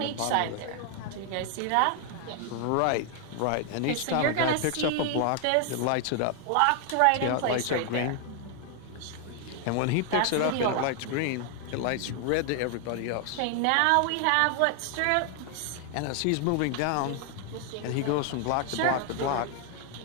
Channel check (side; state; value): both; different; correlation 0.00